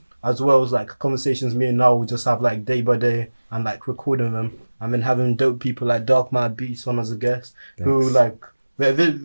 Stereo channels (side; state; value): both; inverted; correlation -1.00